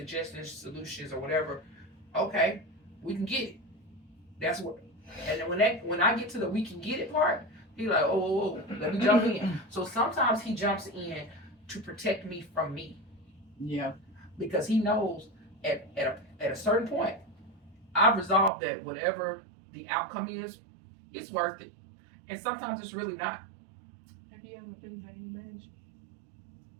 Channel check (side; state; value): left; drops out; at 18.5 s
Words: solutions, or whatever, okay, we can get it. That's what. And then when I get to the we can get it part, he's like, oh, let me jump in. So sometimes he jumps in to protect me from me. Yeah. Because he knows at a certain point, I've resolved that whatever the outcome is, it's worth it. And sometimes it's really not. Have you ever been hanging managed?